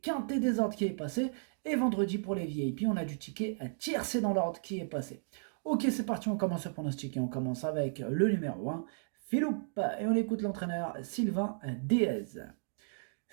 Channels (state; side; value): silent; left; digital silence